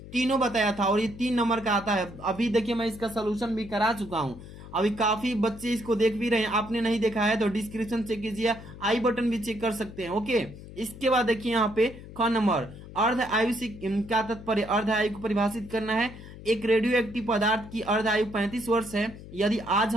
तीनों बताया था। और ये 3 नंबर का आता है। अभी देखिए मैं इसका सोल्यूशन भी करा चुका हूँ। अभी काफी बच्चे इसको देख भी रहे हैं, आपने नहीं देखा है तो डिस्क्रिप्शन चेक कीजिए, आई बटन भी चेक कर सकते हैं, ओके। इसके बाद देखिए यहाँ पे ख नंबर, अर्ध आयु से क्या तात्पर्य, अर्ध आयु को परिभाषित करना है। एक रेडियो एक्टिव पदार्थ की अर्ध आयु 35 वर्ष है। यदि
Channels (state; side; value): noise; left; hum, 15 dB below the sound